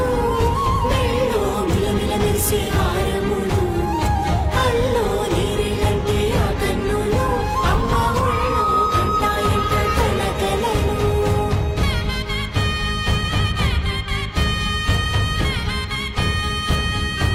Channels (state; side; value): identical; both; correlation 1.00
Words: మెల్లో మిలమిల మెరిసే హారములు అల్లో నీరిలంటే ఆ కన్నులు అమ్మ ఒళ్ళో కంటాయంట కలకలను